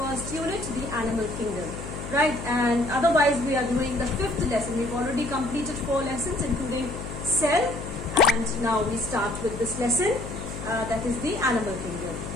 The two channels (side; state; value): left; noise; hum, 9 dB below the sound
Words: unit, the animal kingdom. Right, and otherwise we are doing the fifth lesson. We've already completed 4 lessons, including cell, and now we start with this lesson, that is the animal kingdom.